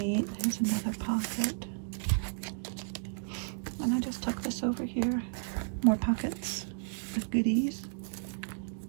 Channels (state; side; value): silent; left; digital silence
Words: Here's another pocket, and I just tuck this over here. More pockets with goodies.